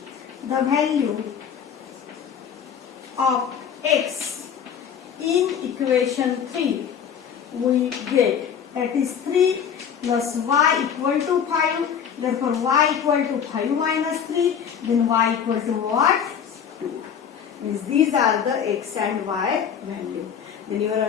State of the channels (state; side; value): quieter; right; 7.9 dB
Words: the value of x in equation 3 we get, that is 3 plus y equal to 5, therefore y equal to 5 minus 3, then y equal to what? 2. Means these are the x and y value. Then your